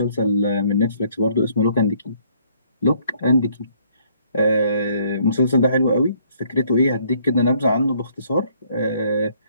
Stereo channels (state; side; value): inverted; both; correlation -0.65